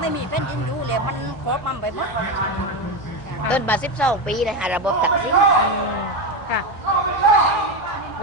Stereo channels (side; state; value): both; normal; correlation 0.14